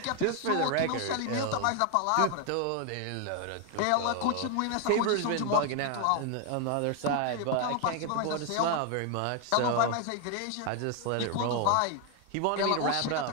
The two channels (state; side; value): different; both; correlation 0.01